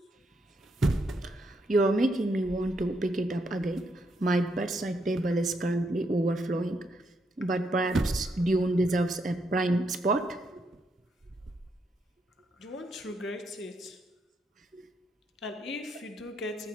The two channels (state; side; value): normal; both; correlation 0.78